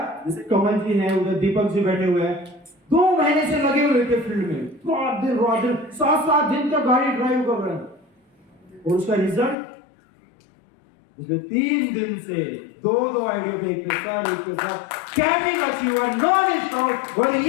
जैसे कमल जी हैं, उधर दीपक जी बैठे हुए हैं, 2 महीने से लगे हुए थे फील्ड में, रात दिन 7-7 दिन तक गाड़ी ड्राइव कर रहे हैं। और उसका रिजल्ट पिछले 3 दिन से 2 आइडिया पे एक कैपिंग अचीवर नॉन स्टॉप, और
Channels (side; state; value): right; drops out; at 9.6 s